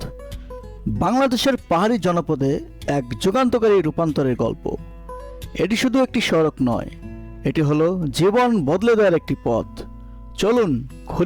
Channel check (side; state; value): both; identical; correlation 1.00